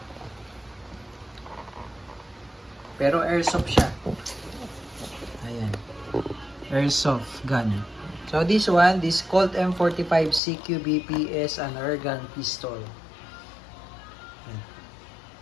Pero airsoft siya. Ayan. Airsoft gun. So this one, this Colt M45 CQBP is an airgun pistol.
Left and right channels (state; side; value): drops out; right; at 10.4 s